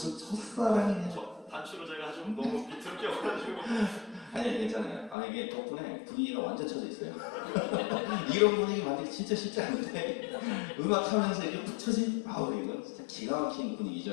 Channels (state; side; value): drops out; right; at 5.2 s